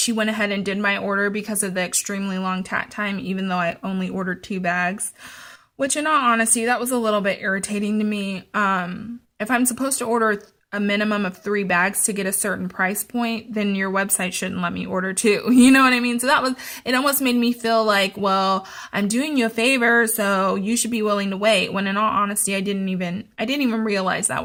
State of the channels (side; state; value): both; identical; correlation 1.00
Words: went ahead and did my order because of the extremely long tat time, even though I only ordered 2 bags. Which, in all honesty, that was a little bit irritating to me. If I'm supposed to order a minimum of 3 bags to get a certain price point, then your website shouldn't let me order 2. You know what I mean? So it almost made me feel like, well, I'm doing you a favor, so you should be willing to wait. When in all honesty, I didn't even realize that